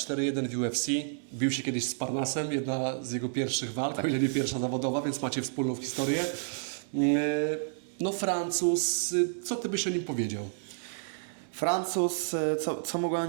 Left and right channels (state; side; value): silent; left; 58 dB below the other